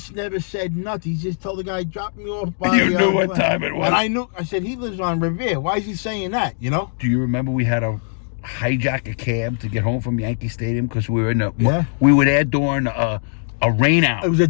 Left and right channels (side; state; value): right; silent; digital silence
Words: never said nothing. He just told the guy, "Drop me off." By You knew what time it was. And I knew. I said, "He lives on Revere. Why is he saying that?" You know. Do you remember we had to hijack a cab to get home from Yankee Stadium because we were in the Yeah. we were there during a rain out. It was a